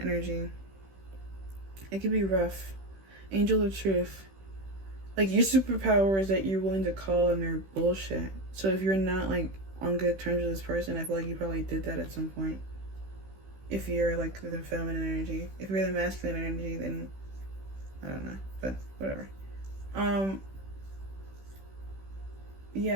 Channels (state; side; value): late; left; 16 ms